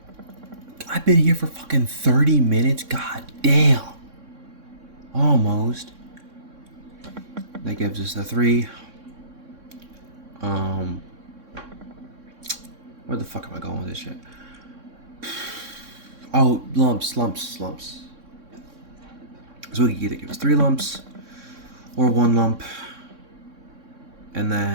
I've been here for fucking 30 minutes. God damn. Almost. That gives us the 3. Where the fuck am I going with this shit? Oh, lumps. So we can either give us 3 lumps or 1 lump. And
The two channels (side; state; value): left; late; 3.6 ms